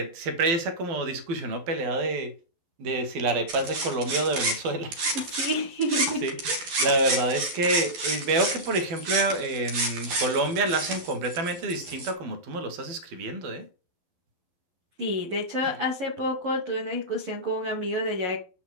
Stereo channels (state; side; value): late; left; 12 ms